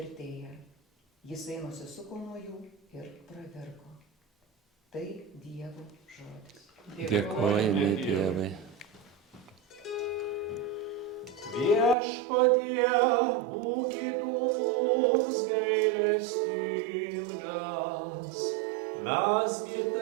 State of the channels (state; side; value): drops out; left; at 12.0 s